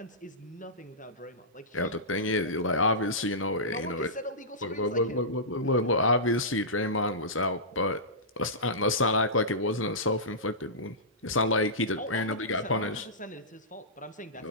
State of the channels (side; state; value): both; normal; correlation -0.18